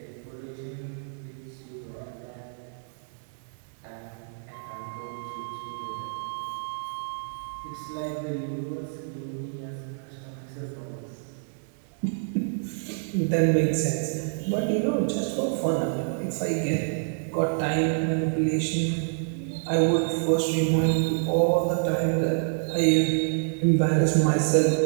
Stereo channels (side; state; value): left; silent; 60 dB below the other